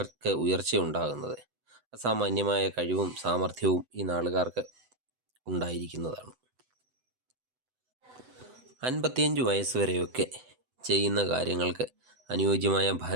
ഉയർച്ചയുണ്ടാകുന്നത്. അസാമാന്യമായ കഴിവും സാമർഥ്യവും ഈ നാളുകാർക്ക് ഉണ്ടായിരിക്കുന്നതാണ്. 55 വയസ്സ് വരെയൊക്കെ ചെയ്യുന്ന കാര്യങ്ങൾക്ക് അനുയോജ്യമായ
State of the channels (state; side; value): late; left; 7.9 ms